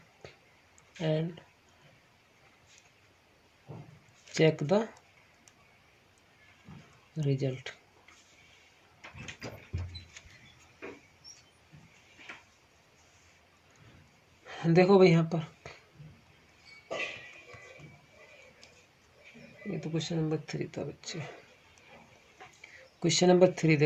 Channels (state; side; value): identical; both; correlation 1.00